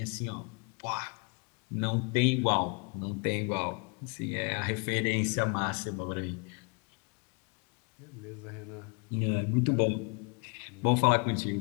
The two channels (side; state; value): right; quieter; 34.4 dB